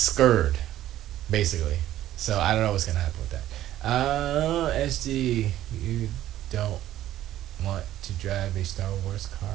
basically. So I don't know what's gonna happen with that. Esgee, you don't want to drive a Star Wars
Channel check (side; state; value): left; quieter; 13.2 dB